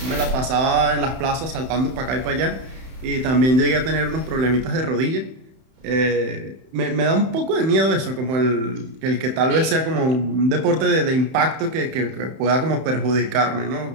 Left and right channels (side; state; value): left; late; 31 ms